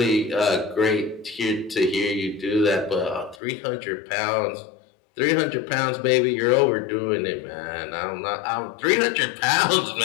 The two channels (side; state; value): right; drops out; at 3.4 s